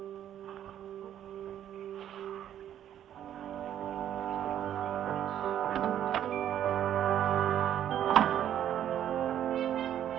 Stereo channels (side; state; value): left; quieter; 10.6 dB